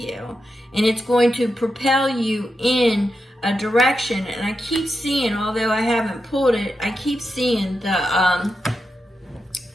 and it's going to propel you in a direction. And I keep seeing, although I haven't pulled it, I keep seeing the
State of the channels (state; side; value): normal; both; correlation 0.87